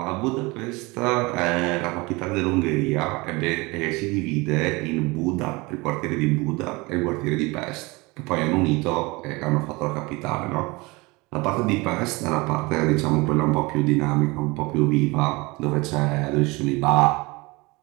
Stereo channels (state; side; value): quieter; left; 24.5 dB